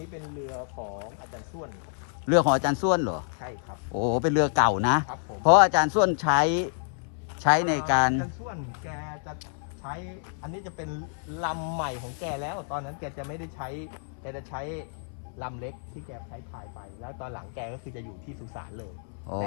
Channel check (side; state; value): right; silent; 59 dB below the other